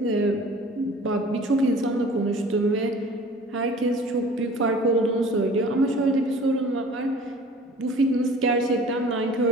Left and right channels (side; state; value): both; normal; correlation 0.47